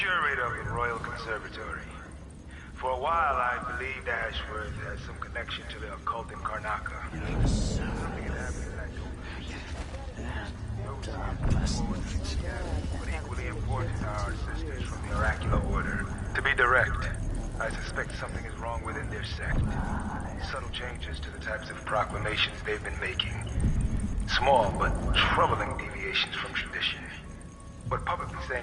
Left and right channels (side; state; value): both; identical; correlation 1.00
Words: of the Royal Conservatory. For a while, I believed Ashworth had some connection to the occult in Karnaca. Yes. Something had happened that I don't but equally important are our sisters from the Oracular Order. To be direct, I suspect something is wrong within their sect. Subtle changes to the types of proclamations they've been making. Small but troubling deviations from tradition. But publicly